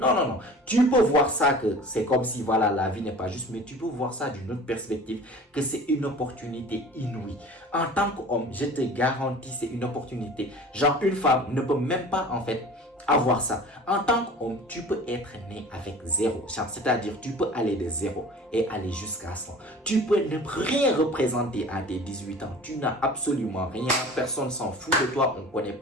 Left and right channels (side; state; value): both; normal; correlation 0.42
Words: non, non. Tu peux voir ça que c'est comme si voilà, la vie n'est pas juste, mais tu peux voir ça d'une autre perspective, que c'est une opportunité inouïe. En tant qu'homme, je te garantis, c'est une opportunité. Genre, une femme ne peut même pas en fait avoir ça. En tant qu'homme, tu peux être né avec zéro. C'est-à-dire, tu peux aller de zéro et aller jusqu'à 100. Tu peux ne rien représenter à tes 18 ans. Tu n'as absolument rien. Personne s'en fout de toi. On ne connaît